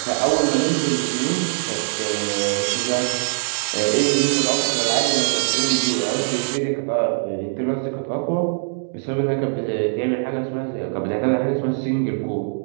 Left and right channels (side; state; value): left; silent; digital silence